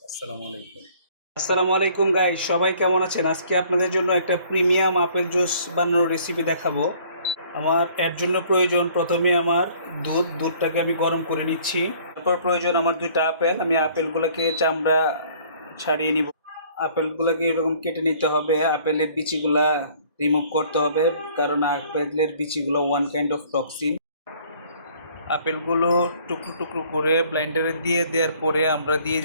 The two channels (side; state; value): both; inverted; correlation -0.56